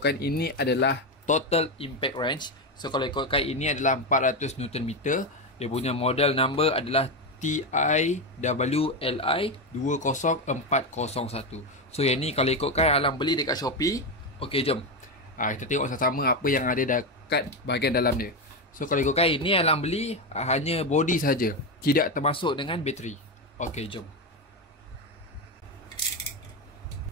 ini adalah total impact wrench. So kalau ikutkan ini adalah 400 Nm. Dia punya model number adalah TIWLI 20401. So yang ni kalau ikutkan Alang beli dekat Shopee. Okey, jom. Kita tengok sama-sama apa yang ada dekat bahagian dalam dia. So kalau ikutkan ini Alang beli hanya body saja, tidak termasuk dengan bateri. Okey, jom.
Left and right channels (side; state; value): both; normal; correlation 0.12